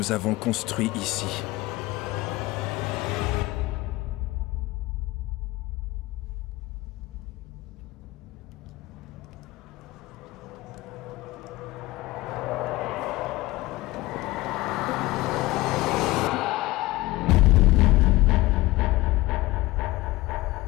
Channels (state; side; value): quieter; right; 19.3 dB